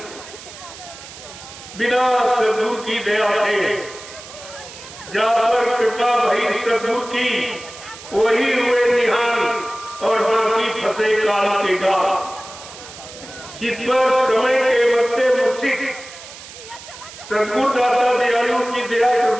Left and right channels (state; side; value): noise; right; hiss, 16 dB below the sound